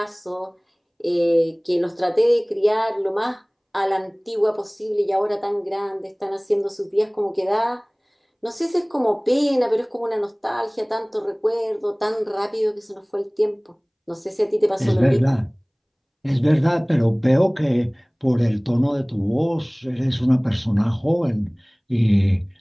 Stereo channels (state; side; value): identical; both; correlation 1.00